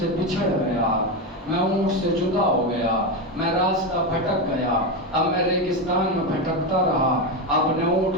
سے بچھڑ گیا, میں اونٹ سے جدا ہو گیا, میں راستہ بھٹک گیا. اب میں ریگستان میں بھٹکتا رہا, اپنے اونٹ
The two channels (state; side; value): normal; both; correlation 0.13